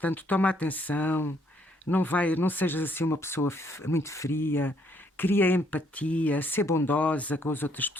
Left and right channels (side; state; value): both; normal; correlation 0.69